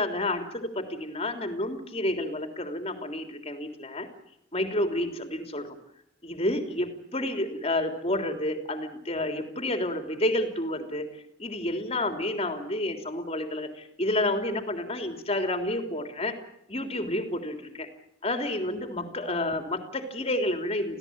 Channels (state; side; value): normal; both; correlation 0.28